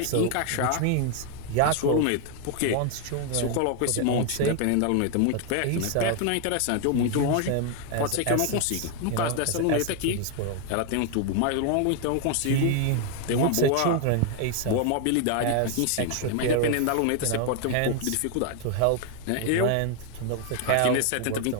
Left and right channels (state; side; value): different; both; correlation 0.00